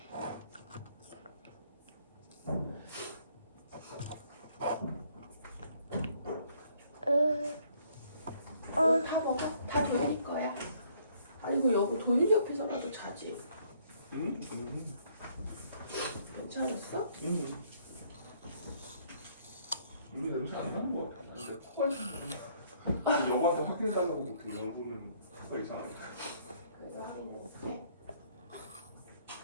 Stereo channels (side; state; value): both; inverted; correlation -0.64